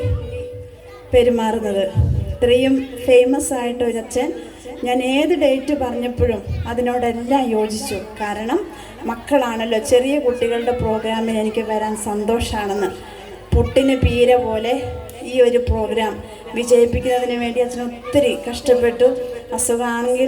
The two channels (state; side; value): identical; both; correlation 1.00